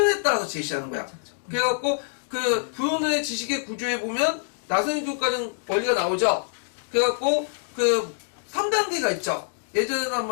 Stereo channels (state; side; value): silent; right; 59 dB below the other